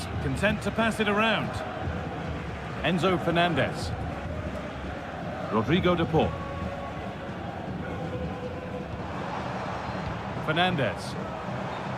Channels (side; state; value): both; identical; correlation 1.00